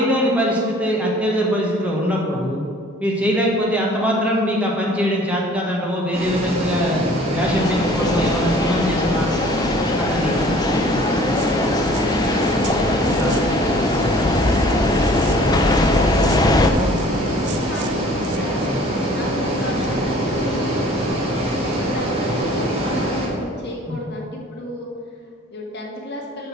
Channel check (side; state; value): both; normal; correlation 0.52